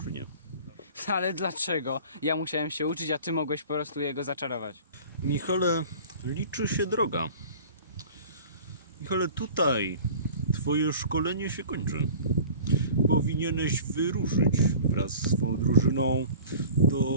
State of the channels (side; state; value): both; inverted; correlation -0.43